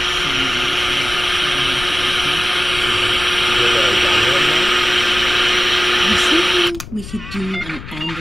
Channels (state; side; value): noise; left; rumble, 13 dB below the sound